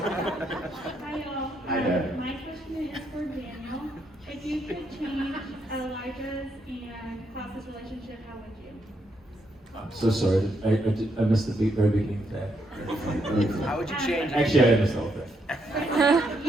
y'all. Hi there. My question is for Daniel. If you could change Elijah's and Klaus's relationship, how would you? I'm so sorry. I missed the very beginning of that. How would you change it? Actually, I missed all of that. If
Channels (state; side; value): normal; both; correlation 0.77